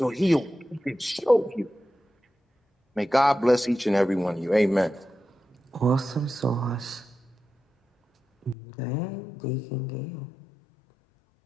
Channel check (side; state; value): right; drops out; at 8.6 s